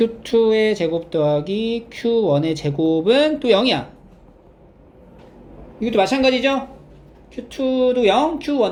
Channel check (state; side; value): identical; both; correlation 1.00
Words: 제곱 더하기 Q1의 제곱은 또 0이야. 이것도 마찬가지죠? Q2도 0,